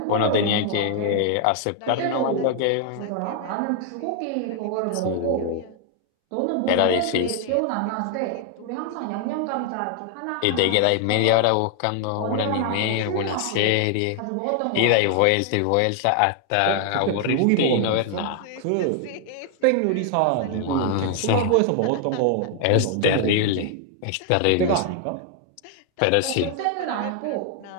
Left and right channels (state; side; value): different; both; correlation 0.00